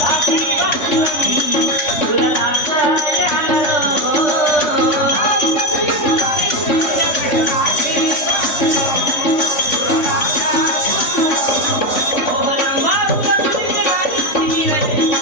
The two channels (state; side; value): late; right; 3.6 ms